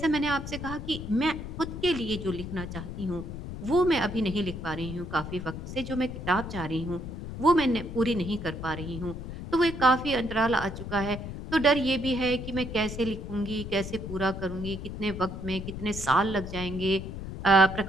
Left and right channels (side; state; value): left; noise; rumble, 8 dB below the sound